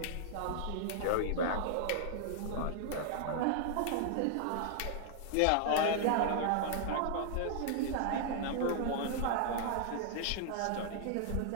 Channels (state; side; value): different; both; correlation -0.01